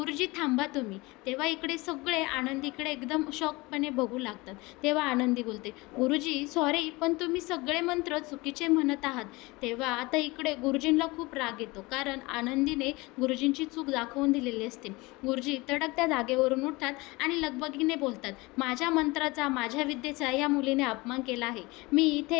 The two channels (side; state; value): right; quieter; 23.3 dB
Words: थांबा तुम्ही. तेव्हा इकडे सगळे आनंदीकडे एकदम शॉकपणे बघू लागतात. तेव्हा आनंदी बोलते, गुरुजी सॉरी, पण तुम्ही सगळे मंत्र चुकीचे म्हणत आहात. तेव्हा आता इकडे गुरुजींना खूप राग येतो, कारण आनंदीने गुरुजींची चूक दाखवून दिलेली असते. गुरुजी तडक त्या जागेवरून उठतात आणि लगबगीने बोलतात, माझ्या मंत्राचा, माझ्या विद्येचा या मुलीने अपमान केला आहे, मी